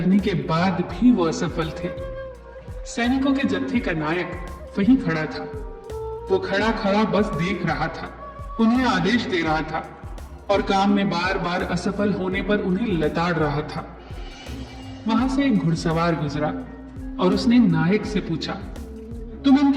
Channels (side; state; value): both; identical; correlation 1.00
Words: के बाद भी वो असफल थे। सैनिकों के जत्थे का नायक वहीं खड़ा था। वो खड़ा खड़ा बस देख रहा था, उन्हें आदेश दे रहा था और काम में बार बार असफल होने पर उन्हें लताड़ रहा था। वहां से एक घुड़सवार गुजरा और उसने नायक से पूछा, तुम